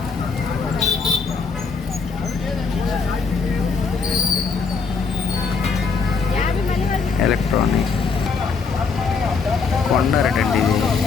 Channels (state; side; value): quieter; right; 5.0 dB